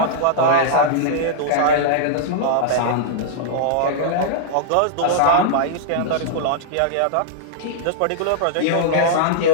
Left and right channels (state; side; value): different; both; correlation -0.01